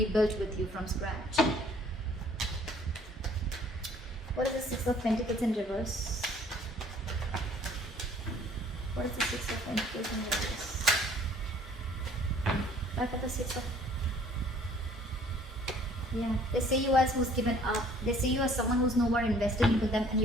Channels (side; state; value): both; normal; correlation 0.56